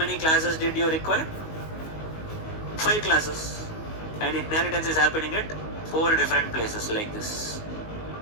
classes did you require? 5 classes. And inheritance is happening at 4 different places like this.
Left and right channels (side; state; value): right; late; 19 ms